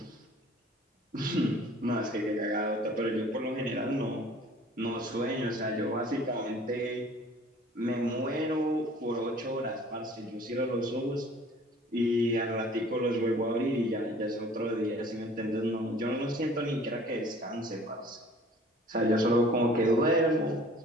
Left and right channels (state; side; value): normal; both; correlation 0.50